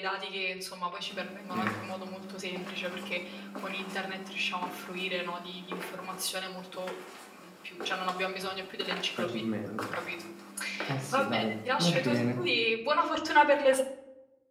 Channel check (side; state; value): both; identical; correlation 1.00